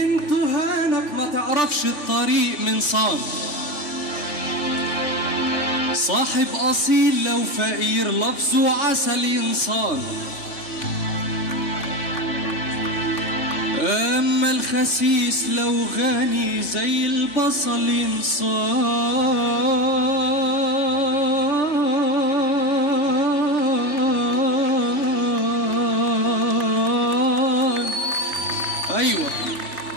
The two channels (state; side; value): late; right; 3.3 ms